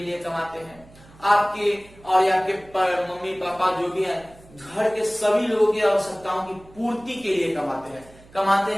लिए कमाते हैं, आपके और आपके मम्मी पापा जो भी हैं, घर के सभी लोगों की आवश्यकताओं की पूर्ति के लिए कमाते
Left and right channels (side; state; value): right; noise; hum, 24 dB below the sound